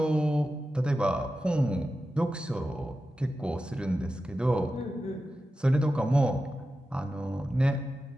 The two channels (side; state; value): both; normal; correlation 0.92